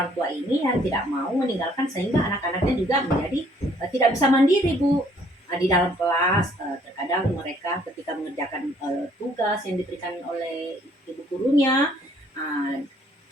tua ini yang tidak mau meninggalkan, sehingga anak-anaknya juga menjadi tidak bisa mandiri Bu. Di dalam kelas terkadang mereka ketika mengerjakan tugas yang diberikan oleh ibu gurunya,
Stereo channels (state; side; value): normal; both; correlation 0.63